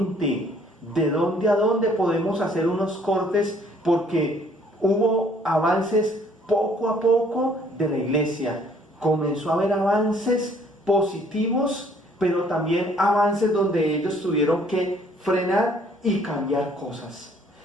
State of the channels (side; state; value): both; normal; correlation 0.61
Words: ¿De dónde a dónde podemos hacer unos cortes? Porque hubo avances poco a poco de la iglesia. Comenzó a haber avances positivos, pero también avances donde ellos tuvieron que frenar y cambiar cosas.